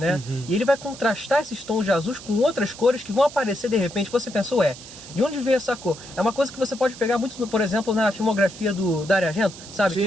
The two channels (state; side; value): noise; right; hiss, 16 dB below the sound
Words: E ele vai contrastar esses tons de azuis com outras cores que vão aparecer de repente. Você pensa, de onde veio essa cor? É uma coisa que você pode pegar muito, por exemplo, na filmografia do Dario Argento, sabe? Sim, que